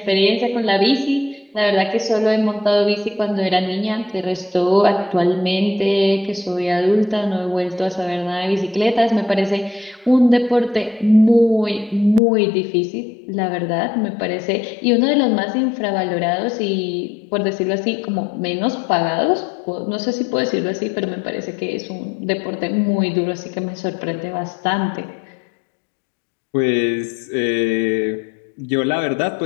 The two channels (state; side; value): drops out; right; at 12.2 s